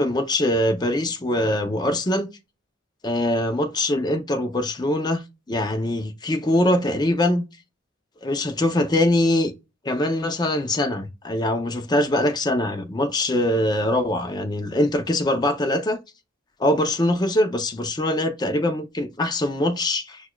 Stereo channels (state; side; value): normal; both; correlation 0.61